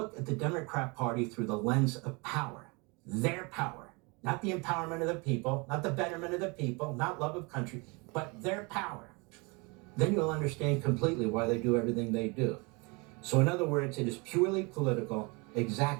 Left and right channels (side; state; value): left; quieter; 28.9 dB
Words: at the Democrat Party through the lens of power, their power, not the empowerment of the people, not the betterment of the people, not love of country, but their power, then you'll understand completely why they do everything they do. So in other words, it is purely political,